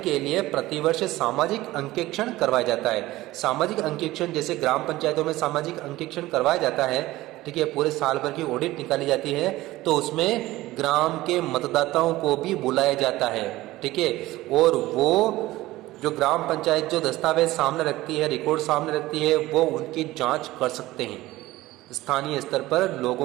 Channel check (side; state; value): left; quieter; 17.5 dB